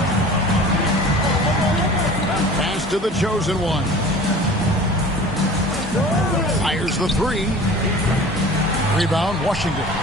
Pass to the chosen one. Fires the three. Rebound, Washington.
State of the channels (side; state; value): both; normal; correlation 0.41